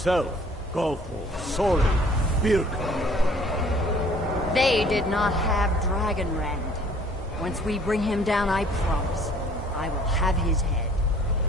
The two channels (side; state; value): both; normal; correlation 0.55